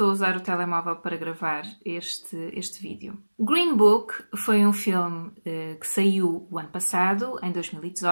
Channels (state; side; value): inverted; both; correlation -1.00